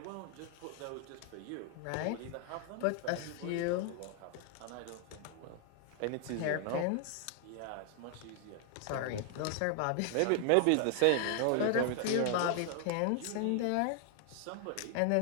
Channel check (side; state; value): both; different; correlation 0.00